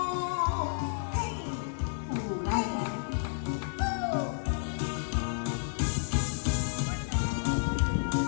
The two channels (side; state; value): right; silent; digital silence